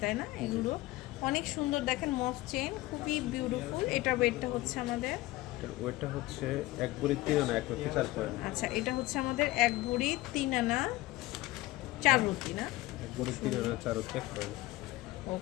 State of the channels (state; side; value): quieter; right; 18.8 dB